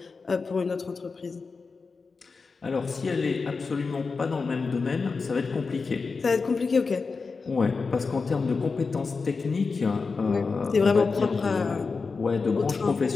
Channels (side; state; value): right; quieter; 4.5 dB